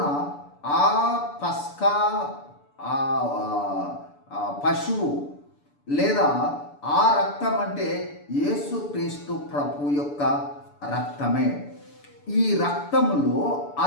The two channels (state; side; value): late; right; 6.9 ms